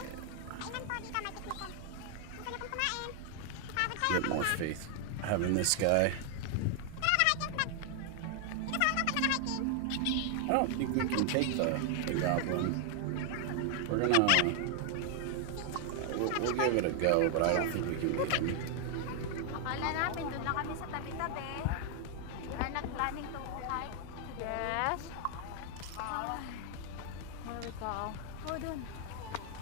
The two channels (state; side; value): different; both; correlation 0.00